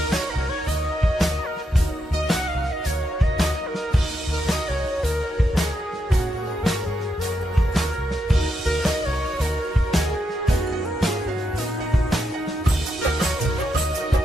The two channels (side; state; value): both; normal; correlation 0.82